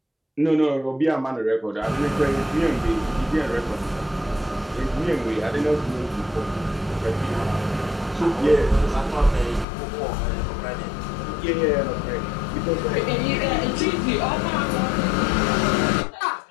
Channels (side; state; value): right; drops out; at 9.7 s